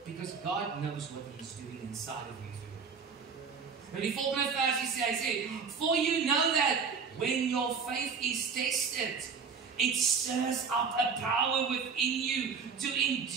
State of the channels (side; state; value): left; quieter; 5.7 dB